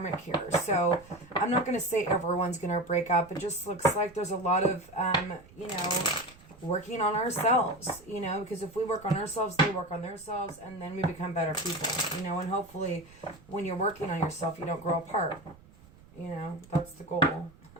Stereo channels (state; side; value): noise; right; rumble, 24 dB below the sound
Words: here. So I'm not going to say everyone's going to break up. It just looks like there's a lot of, you know, working on ourselves, you know, because if we work on ourselves, they work on themselves, and then we become better people, you know, and hopefully when you're working on yourself, you don't grow apart. You know, that's the goal.